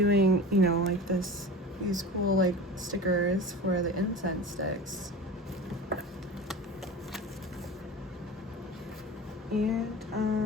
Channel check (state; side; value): normal; both; correlation 0.33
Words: like these cool like stickers for the incense sticks.